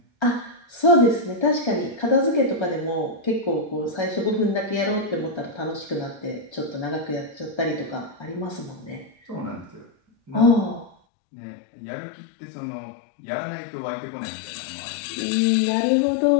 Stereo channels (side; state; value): right; drops out; at 11.0 s